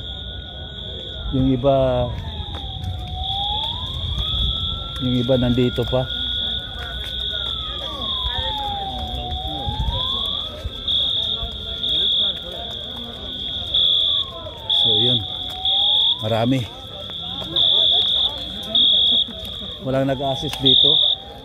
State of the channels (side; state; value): both; identical; correlation 1.00